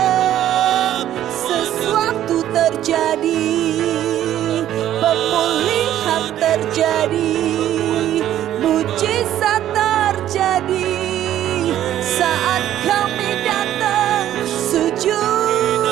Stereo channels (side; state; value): left; quieter; 12.0 dB